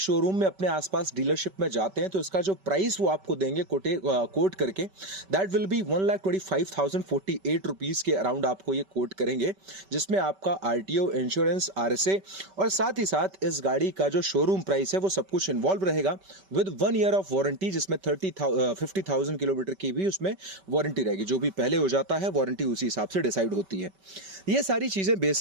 में अपने आसपास डीलरशिप में जाते हैं तो इसका जो प्राइस वो आपको देंगे कोट करके, दैट विल बी 1,25,048 रुपीज़ के अराउंड आपको ये कोट करेंगे, जिसमें आपका आरटीओ, इंश्योरेंस, आरएसए और साथ ही साथ इस गाड़ी का जो शोरूम प्राइस है वो सब कुछ इन्वॉल्व रहेगा, विद 1 ईयर ऑफ वारंटी, जिसमें 50,000 किलोमीटर की भी उसमें वारंटी रहेगी। जो भी पहले हो जाता है वारंटी उसी हिसाब से डिसाइड होती है। ये सारी चीज़ें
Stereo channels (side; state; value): left; late; 5.2 ms